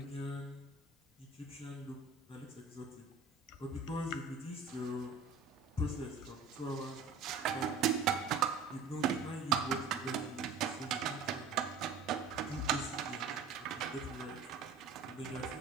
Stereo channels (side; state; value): left; quieter; 5.0 dB